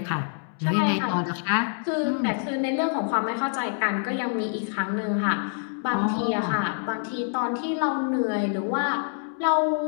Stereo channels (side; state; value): right; silent; digital silence